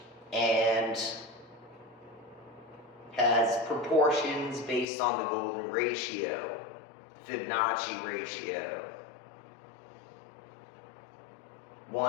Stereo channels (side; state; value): right; drops out; at 4.9 s